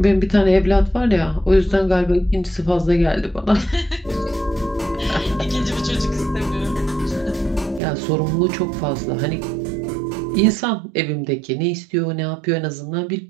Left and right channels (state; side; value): drops out; left; at 7.8 s